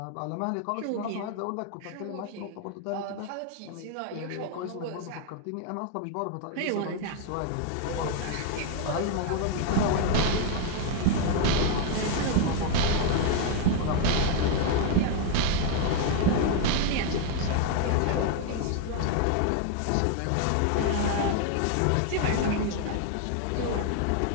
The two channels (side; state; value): both; different; correlation 0.00